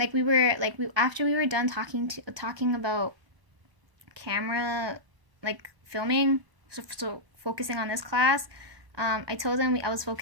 after we were done talking about camera, like filming, so focusing on this class. I told him I was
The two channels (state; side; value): late; left; 1.2 ms